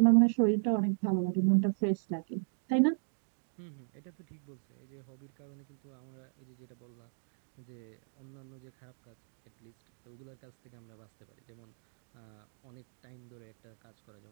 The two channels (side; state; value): left; silent; digital silence